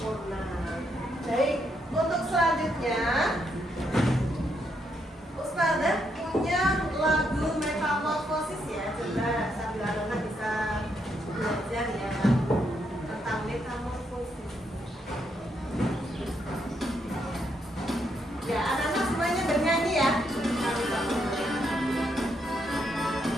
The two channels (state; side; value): normal; both; correlation 0.77